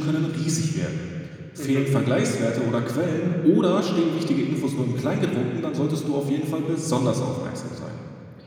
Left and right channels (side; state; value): both; identical; correlation 1.00